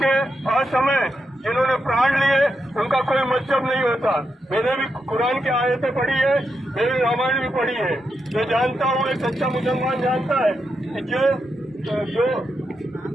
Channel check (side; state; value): both; normal; correlation 0.85